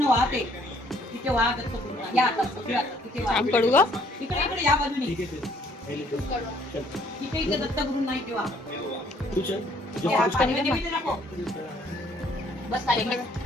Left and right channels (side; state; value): both; normal; correlation 0.63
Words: वाहत आहे तिथे वाह दत्तगुरूंना या आता तिथे वाह. आम पडू ग. इकडे इकडे या बाजूने ठीक है फिर मैं लिख दे चल तिथे इथे दत्तगुरूंना इथे वाह. तू चल जो या कुछ पाणी मध्ये बिथे नको. बस खाली बस.